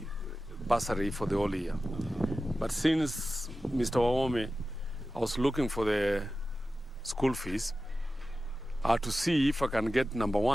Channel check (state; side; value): normal; both; correlation 0.94